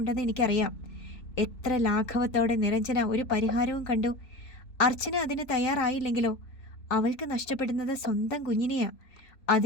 എനിക്കറിയാം. എത്ര ലാഘവത്തോടെ നിരഞ്ജന ഒരു പരിഹാരവും കണ്ടു. അർച്ചന അതിന് തയ്യാറായില്ലെങ്കിലോ? അവൾക്ക് നഷ്ടപ്പെടുന്നത് സ്വന്തം കുഞ്ഞിനെയാ.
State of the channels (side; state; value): right; late; 3.9 ms